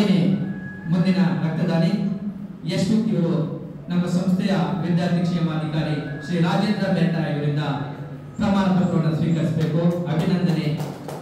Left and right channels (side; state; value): both; identical; correlation 1.00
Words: ಮುಂದಿನ ರಕ್ತದಾನಿ ಯಶ್ವಿಕ್ ಇವರು ನಮ್ಮ ಸಂಸ್ಥೆಯ ವಿದ್ಯಾರ್ಥಿ ಕ್ಷೇಮಾಧಿಕಾರಿ ಶ್ರೀ ರಾಜೇಂದ್ರ ಮೆಟ್ಟ ಇವರಿಂದ ಪ್ರಮಾಣ ಪತ್ರವನ್ನು ಸ್ವೀಕರಿಸಬೇಕು. ಅಭಿನಂದನೆ